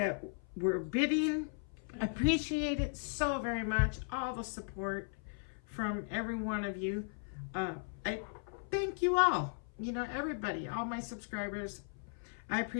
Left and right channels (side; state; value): right; silent; 53 dB below the other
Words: were bidding. Appreciate it so very much. All the support from every one of you. I thank you all. You know, everybody, all my subscribers. I